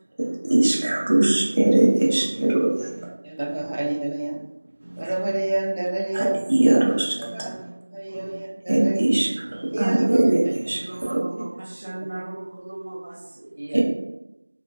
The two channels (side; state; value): both; inverted; correlation -1.00